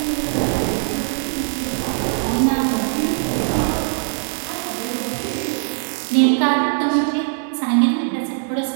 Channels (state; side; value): silent; left; digital silence